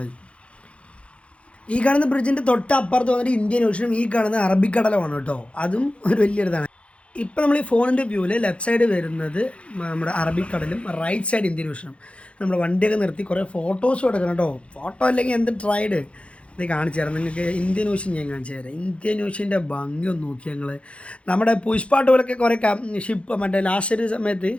ഈ കാണുന്ന ബ്രിഡ്ജിൻ്റെ തൊട്ടപ്പുറത്ത് വന്നിട്ട് ഇന്ത്യൻ ഓഷ്യനും ഈ കാണുന്ന അറബിക്കടലുമാണ് കേട്ടോ, അതും ഒരു വലിയൊരിതാണ്. ഇപ്പം നമ്മൾ ഈ ഫോണിൻ്റെ വ്യൂവിൽ ലെഫ്റ്റ് സൈഡ് വരുന്നത് നമ്മുടെ അറബിക്കടലും റൈറ്റ് സൈഡ് ഇന്ത്യൻ ഓഷ്യനും. നമ്മുടെ വണ്ടിയൊക്കെ നിർത്തി കുറേ ഫോട്ടോസും എടുക്കണം കേട്ടോ. ഫോട്ടോ അല്ലെങ്കിൽ എന്ത് ട്രൈഡ് ഇത് കാണിച്ചു തരാം നിങ്ങൾക്ക്. ഇന്ത്യൻ ഓഷ്യൻ ഞാൻ കാണിച്ചു തരാം. ഇന്ത്യൻ ഓഷ്യൻ്റെ ഭംഗി ഒന്ന് നോക്കി ഞങ്ങൾ. നമ്മുടെ പുഷ്പാട്ട് പോലൊക്കെ കുറേ ഷിപ്പ് മറ്റേ ലാസ്റ്റ് ഒരു സമയത്ത്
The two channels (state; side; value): late; right; 0.061 ms